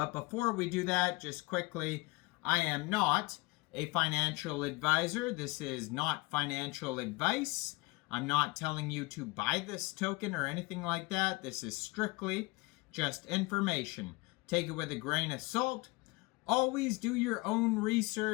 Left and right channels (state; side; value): quieter; right; 24.2 dB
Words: before we do that, just quickly, I am not a financial advisor. This is not financial advice. I'm not telling you to buy this token or anything like that. This is strictly just information. Take it with a grain of salt. Always do your own